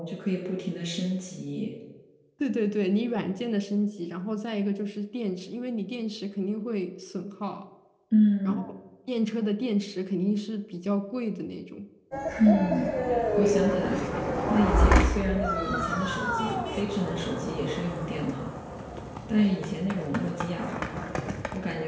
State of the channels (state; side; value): identical; both; correlation 1.00